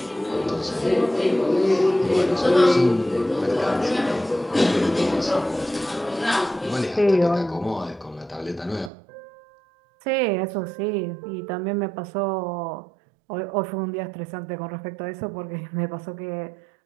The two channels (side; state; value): left; drops out; at 8.9 s